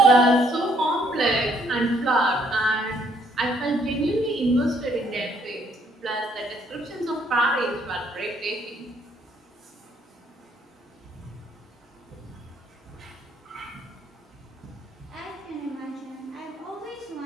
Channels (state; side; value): normal; both; correlation 0.67